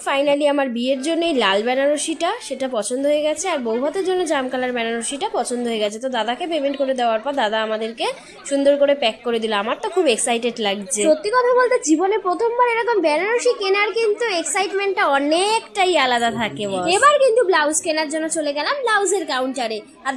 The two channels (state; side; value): identical; both; correlation 1.00